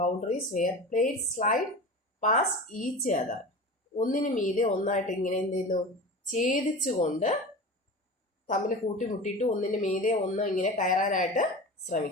where plates slide pass each other. ഒന്നിനു മീതെ ഒന്നായിട്ട് ഇങ്ങനെ എന്ത് ചെയ്യുന്നു? ഛേദിച്ചുകൊണ്ട് തമ്മിൽ കൂട്ടിമുട്ടിയിട്ട് ഒന്നിനു മീതെ ഒന്ന് ഇങ്ങനെ കയറാനായിട്ട്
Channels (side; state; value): both; normal; correlation 0.32